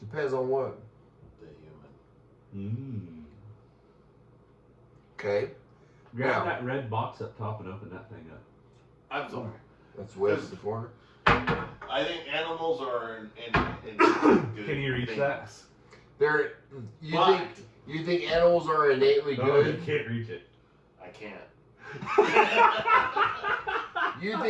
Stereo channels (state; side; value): identical; both; correlation 1.00